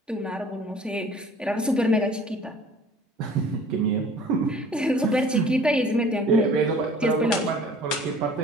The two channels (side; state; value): both; normal; correlation 0.50